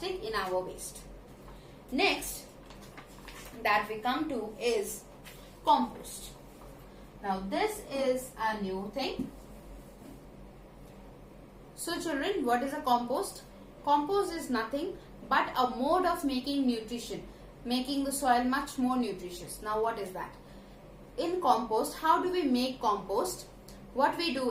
in our waste. Next that we come to is compost. Now this is a new thing. So children, what is a compost? Compost is nothing but a mode of making nutrition, making the soil much more nutritious. Now what is that? In compost, how do we make compost? What we do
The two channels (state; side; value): identical; both; correlation 1.00